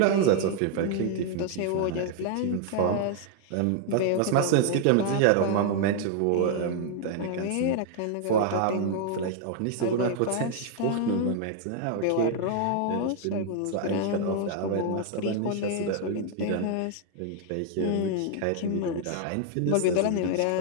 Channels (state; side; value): different; both; correlation 0.00